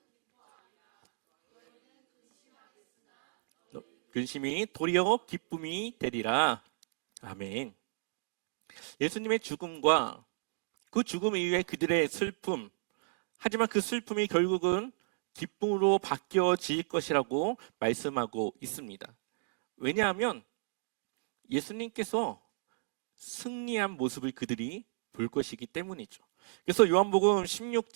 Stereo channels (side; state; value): left; silent; digital silence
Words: 근심이 도리어 기쁨이 되리라. 아멘. 예수님의 죽음과 그 죽음 이후에 그들의 슬픔, 하지만 그 슬픔이 결국은 기쁨으로 바뀌어질 것이라고 말씀하고 있습니다. 왜냐하면 예수님께서 승리한 모습을 그들이 볼 것이기 때문이죠. 그래서 요한복음